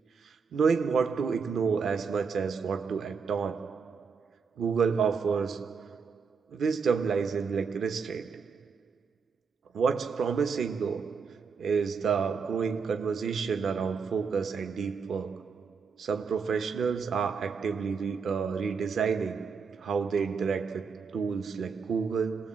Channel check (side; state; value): left; quieter; 5.6 dB